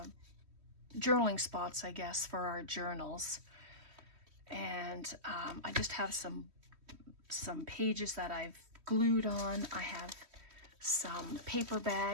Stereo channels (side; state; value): left; late; 3.1 ms